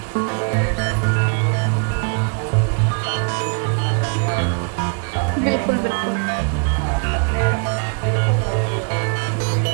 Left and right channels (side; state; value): left; quieter; 39.4 dB